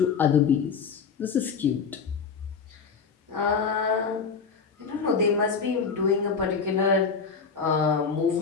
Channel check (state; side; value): quieter; right; 5.6 dB